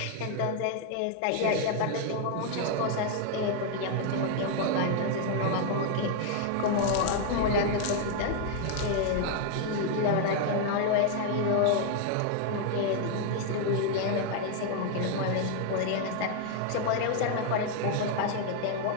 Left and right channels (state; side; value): different; both; correlation 0.00